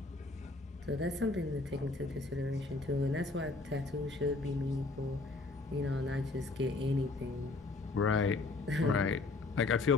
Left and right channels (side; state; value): right; quieter; 3.4 dB